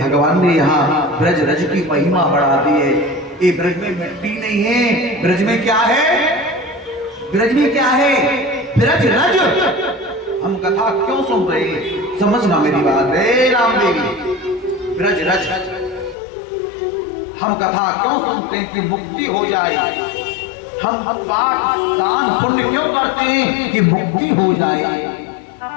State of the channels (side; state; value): right; drops out; at 16.2 s